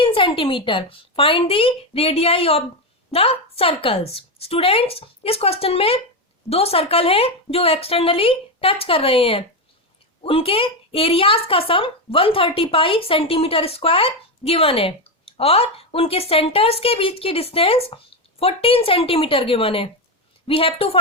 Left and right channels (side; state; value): both; normal; correlation 0.10